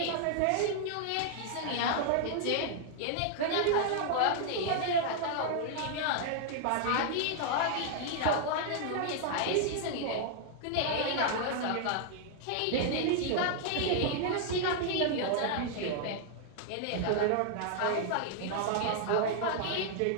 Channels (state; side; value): different; both; correlation 0.00